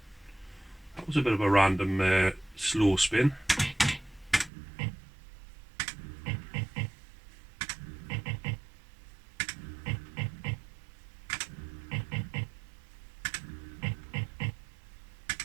That was a bit of a random slow spin.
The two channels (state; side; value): drops out; left; at 4.5 s